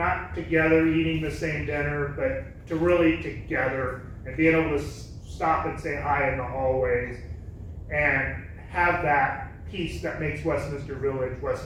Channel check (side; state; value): both; identical; correlation 1.00